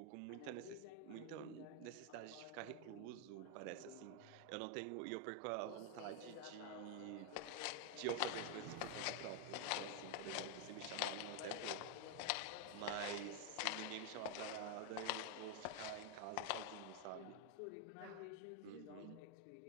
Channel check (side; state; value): both; different; correlation 0.01